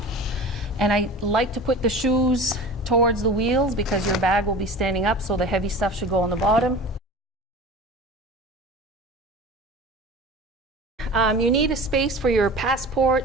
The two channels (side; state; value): both; normal; correlation 0.36